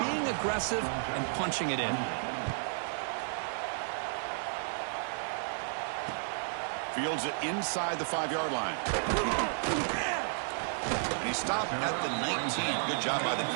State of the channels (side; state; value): left; silent; 56 dB below the other